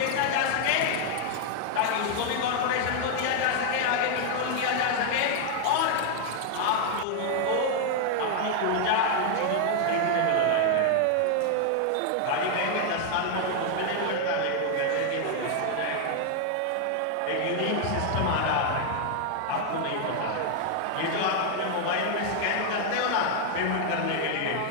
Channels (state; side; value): different; both; correlation 0.00